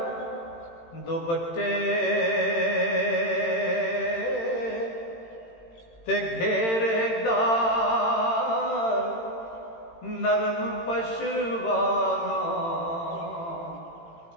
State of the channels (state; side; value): late; right; 18 ms